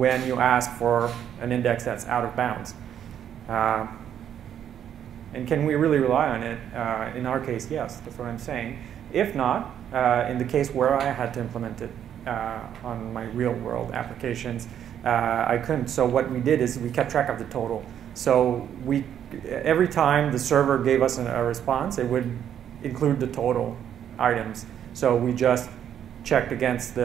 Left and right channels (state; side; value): quieter; left; 9.6 dB